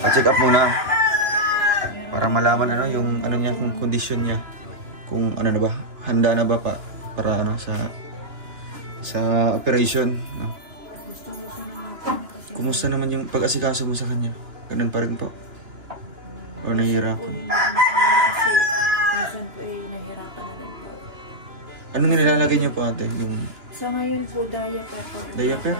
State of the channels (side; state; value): left; late; 2.9 ms